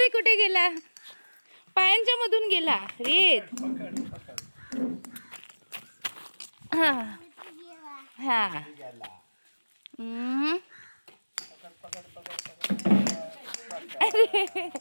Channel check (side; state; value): both; inverted; correlation -1.00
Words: कुठे गेला. पायांच्या मधून गेला रेत. हा हा अरे